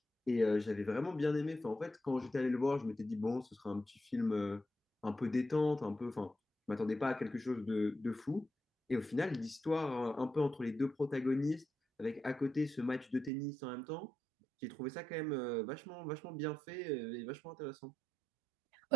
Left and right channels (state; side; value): drops out; left; at 13.3 s